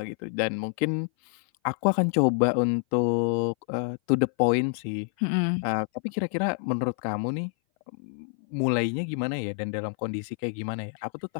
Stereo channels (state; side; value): silent; right; 58 dB below the other